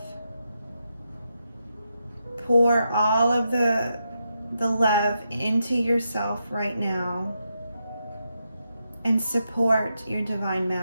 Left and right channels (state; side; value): inverted; both; correlation -0.84